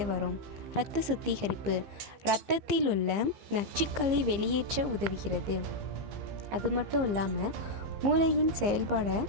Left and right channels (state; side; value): late; left; 15 ms